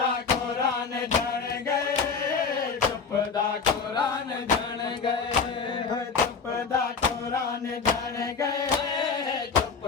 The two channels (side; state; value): right; quieter; 5.4 dB